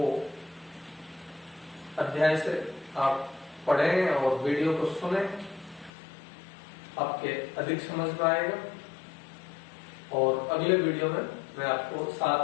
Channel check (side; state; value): right; drops out; at 5.9 s